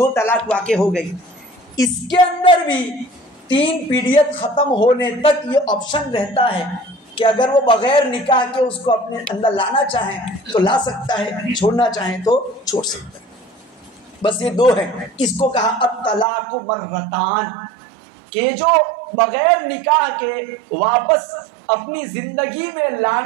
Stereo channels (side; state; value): left; drops out; at 16.2 s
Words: طلاق واقع ہو گئی۔ اس کے اندر بھی 3 پیریڈ ختم ہونے تک یہ آپشن رہتا ہے کہ اگر وہ بغیر نکاح کے اس کو اپنے اندر لانا چاہیں تو لا سکتا ہے، چھوڑنا چاہیں تو چھوڑ سکتا ہے۔ بس یہ 2 ہیں۔ اس کو کہا الطلاق مرتان، کہ جو بغیر نکاح کے واپس اپنی زندگی میں